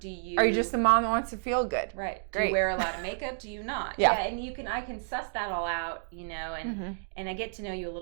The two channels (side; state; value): left; silent; digital silence